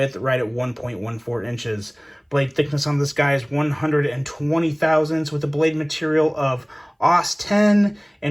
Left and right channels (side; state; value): both; identical; correlation 1.00